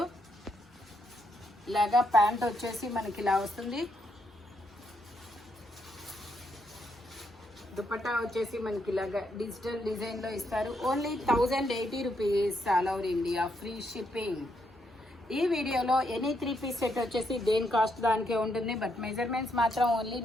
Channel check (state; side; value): normal; both; correlation 0.77